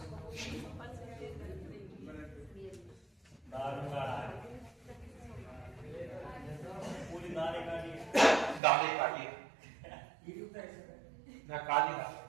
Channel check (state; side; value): drops out; left; at 8.6 s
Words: दाले काटिए ना, काली दाल